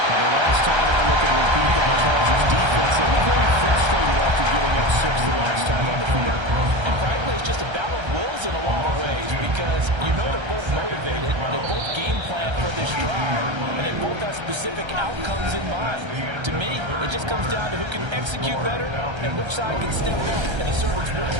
And the last time I look at repeat that Chargers defense, they were very frustrated after giving up 6 the last time on the field. And frankly, it's just a battle of wills in a lot of ways because you know they're both motivated. They both game plan for this drive, and they both have specific outcomes in mind. To me, it just comes down to who can execute better and which side can step up and assert its will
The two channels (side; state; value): left; late; 1.3 ms